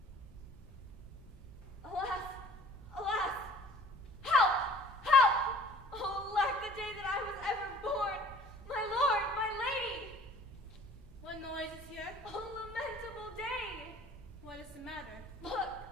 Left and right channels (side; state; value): both; normal; correlation 0.51